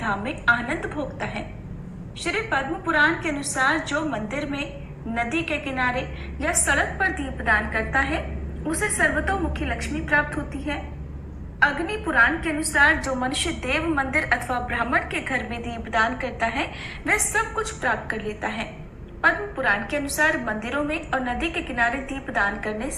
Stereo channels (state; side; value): identical; both; correlation 1.00